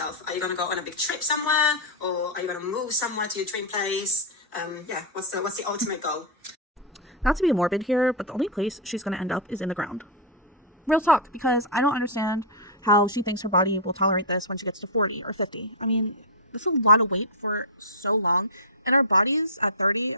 Are you going to go on a big trip somewhere? Or are you going to move somewhere to your dream place? What's the ultimate goal? Not to be morbid here, but the only place she's going to end up is in the ground. Real talk, because I don't understand how she thinks her body will tolerate this when she gets to 40 or 50. I mean, this is a lot of weight for so long. And our bodies at 30,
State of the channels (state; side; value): normal; both; correlation -0.08